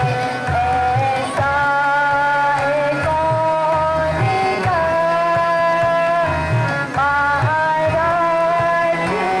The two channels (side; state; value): both; identical; correlation 1.00